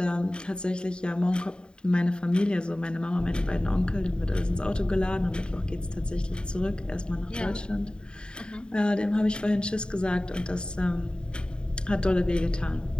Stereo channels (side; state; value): right; late; 0.049 ms